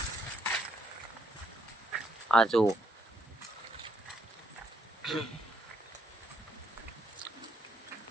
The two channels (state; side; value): normal; both; correlation 0.72